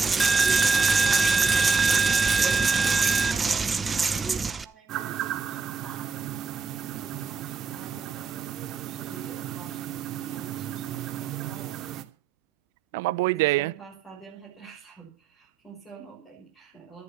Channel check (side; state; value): left; quieter; 4.9 dB